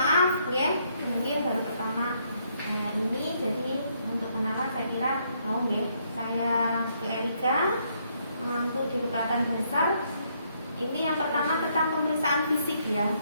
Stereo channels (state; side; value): inverted; both; correlation -0.72